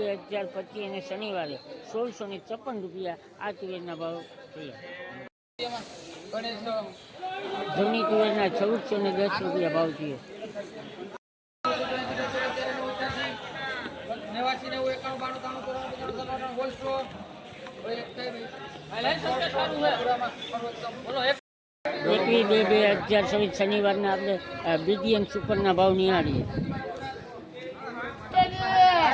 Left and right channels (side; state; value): both; identical; correlation 1.00